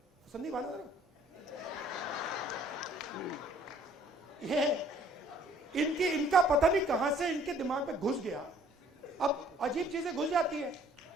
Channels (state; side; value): normal; both; correlation 0.58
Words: संदीप आना जरा। ये इनका पता नहीं कहां से इनके दिमाग में घुस गया। अब अजीब चीजें घुस जाती है,